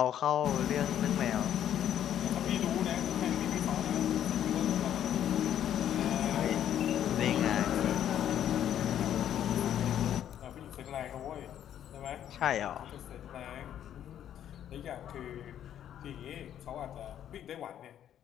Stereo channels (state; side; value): quieter; right; 10.5 dB